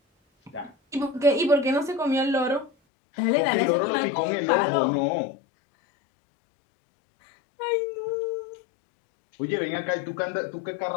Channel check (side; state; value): right; drops out; at 2.7 s